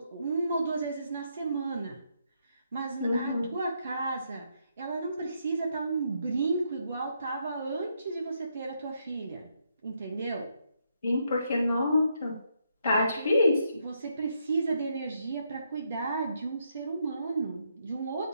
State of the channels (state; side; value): inverted; both; correlation -0.77